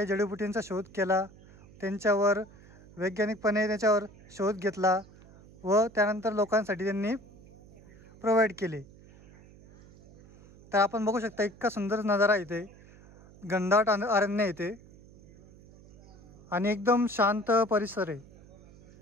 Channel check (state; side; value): noise; right; hum, 23 dB below the sound